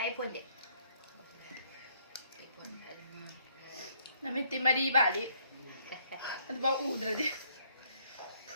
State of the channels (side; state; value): both; inverted; correlation -0.67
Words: 폰데. 나미티 마리 바리. 아주 막 우드라디.